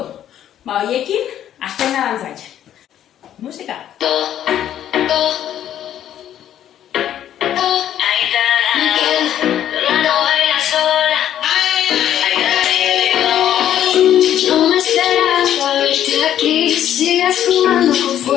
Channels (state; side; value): quieter; right; 10.9 dB